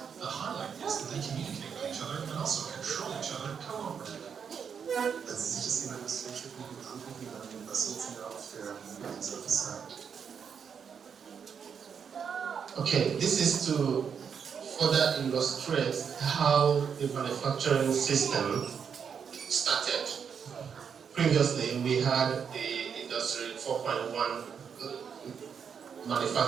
The highlight is that they communicate with each other and also control each other cooperatively. Okay, this is to further illustrate how the manufacturing system started. Previously, we had the Industry 4.1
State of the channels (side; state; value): left; quieter; 7.0 dB